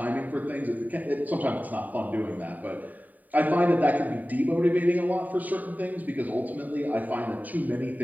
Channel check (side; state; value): left; late; 0.081 ms